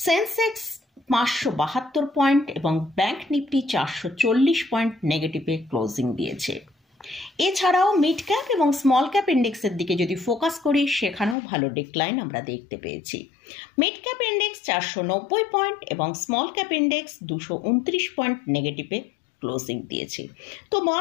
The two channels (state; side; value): drops out; right; at 11.4 s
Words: সেন্সেক্স 572 পয়েন্ট এবং ব্যাংক নিফটি 440 পয়েন্ট নেগেটিভে ক্লোজিং দিয়েছে। এছাড়াও মিড ক্যাপ এবং স্মল ক্যাপ ইন্ডেক্সের দিকে যদি ফোকাস করি সেখানেও ভালো ডিক্লাইন আমরা দেখতে পেয়েছি। মিড ক্যাপ ইন্ডেক্স 490 পয়েন্ট এবং স্মল ক্যাপ ইন্ডেক্স 229 পয়েন্ট নেগেটিভে ক্লোজিং দিয়েছে। তো